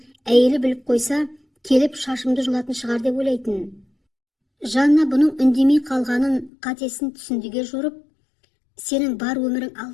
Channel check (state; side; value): drops out; right; at 6.5 s